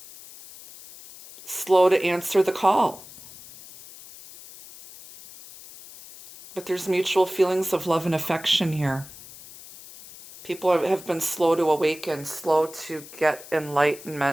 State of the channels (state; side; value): noise; left; hiss, 18 dB below the sound